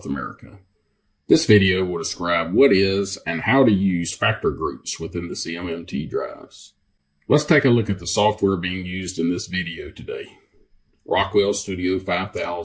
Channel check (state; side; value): identical; both; correlation 1.00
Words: America. This video will describe what is and how to use factor groups within the CMMT drives. Let's take a look at the software being used in this video today. Rockwell Studio